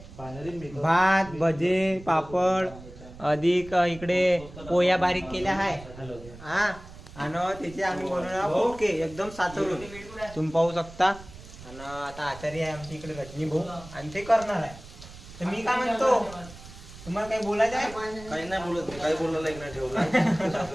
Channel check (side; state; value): right; noise; rumble, 17 dB below the sound